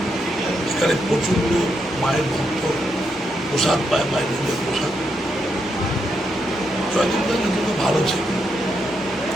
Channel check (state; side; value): normal; both; correlation 0.81